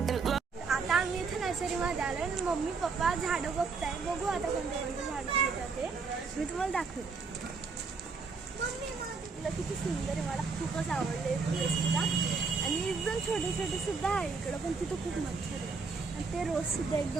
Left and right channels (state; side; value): quieter; left; 4.6 dB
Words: आता आम्ही इथे नर्सरीमध्ये आलो आणि मम्मी पप्पा झाडं बघताय. बघू आता कोणते कोणते झाडं येतात ते मी तुम्हाला दाखवते. तुला किती सुंदर आहे, मला खूपच आवडले फुलं सुद्धा. आणि एकदम छोटे छोटे सुद्धा आहे इकडं पण तिथं खूप मच्छर आहे. आणि ते रोज सुद्धा